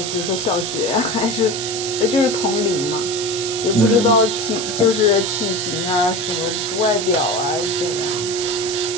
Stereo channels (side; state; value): right; noise; hiss, 6 dB below the sound